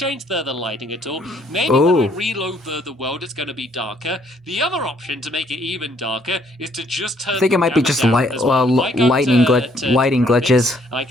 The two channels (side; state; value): both; normal; correlation 0.66